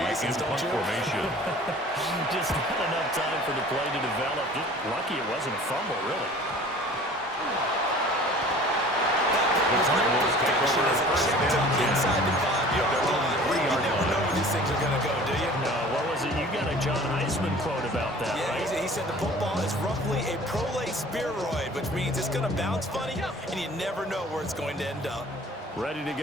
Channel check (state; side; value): normal; both; correlation 0.46